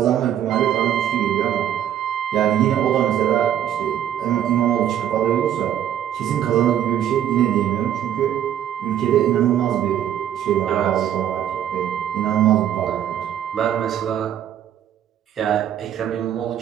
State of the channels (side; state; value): left; quieter; 10.5 dB